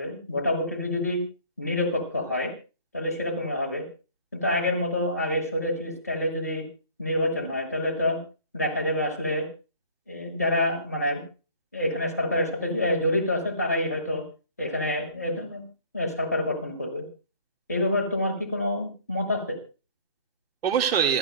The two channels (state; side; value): inverted; both; correlation -0.50